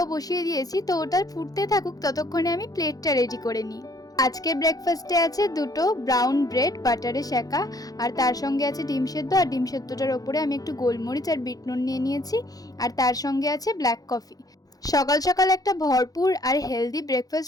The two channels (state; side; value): late; right; 0.18 ms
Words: বসিয়ে দিয়েছি, তো ওটা ফুটতে থাকুক, ততক্ষণে আমি প্লেটটা রেডি করে নিই। আজকের ব্রেকফাস্টে আছে দুটো ব্রাউন ব্রেড বাটারে সেঁকা, আর তার সঙ্গে আছে ডিম সেদ্ধ। আর ডিম সেদ্ধটার ওপরে আমি একটু গোলমরিচ আর বিট নুন নিয়ে নিয়েছি। আর তার সঙ্গে আছে ব্ল্যাক কফি। সকাল সকাল একটা ভরপুর আর হেলদি